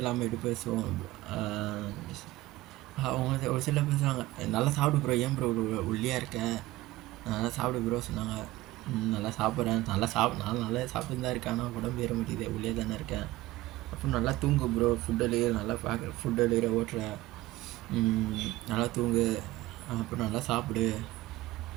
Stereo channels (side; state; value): left; quieter; 17.7 dB